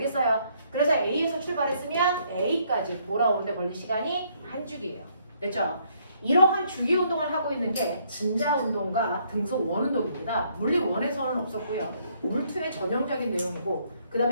그래서 A에서 출발했으면 A까지 돌아오는 데 걸린 시간이 한 주기예요. 됐죠? 이러한 주기 운동을 하고 있는 게 진자 운동과 등소 원 운동입니다. 물리 1에서는 없었고요. 물 2의 전형적인 내용이고 그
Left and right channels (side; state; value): both; inverted; correlation -0.68